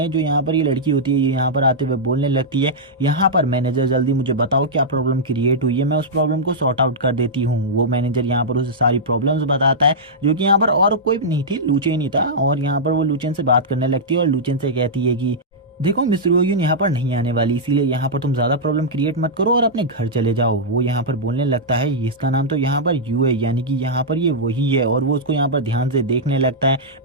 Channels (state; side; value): normal; both; correlation -0.10